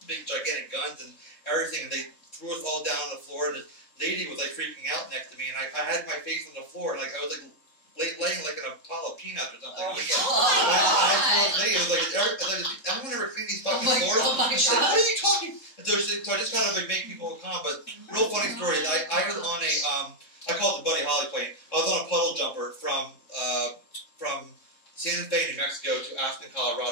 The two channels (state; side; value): late; right; 3.7 ms